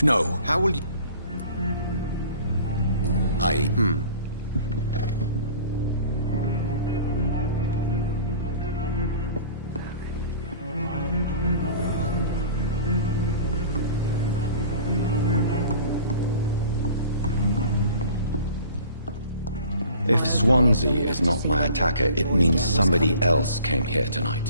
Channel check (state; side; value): inverted; both; correlation -0.45